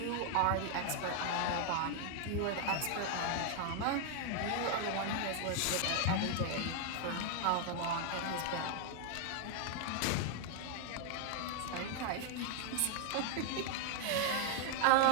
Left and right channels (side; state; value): both; different; correlation 0.00